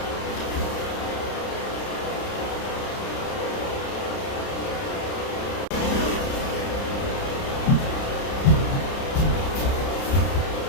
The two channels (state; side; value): late; right; 30 ms